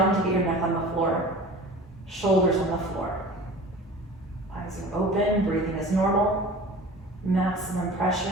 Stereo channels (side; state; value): both; normal; correlation 0.40